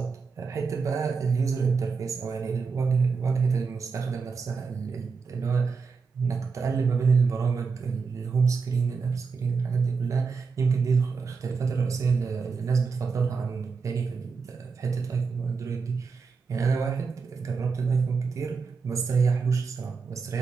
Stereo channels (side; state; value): left; quieter; 5.0 dB